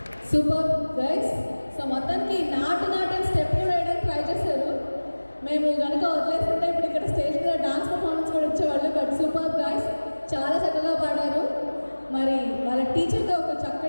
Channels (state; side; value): inverted; both; correlation -1.00